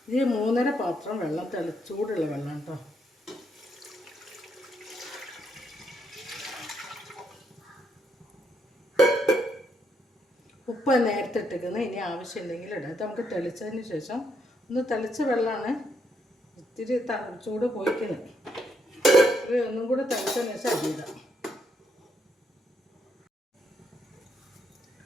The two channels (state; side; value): normal; both; correlation 0.76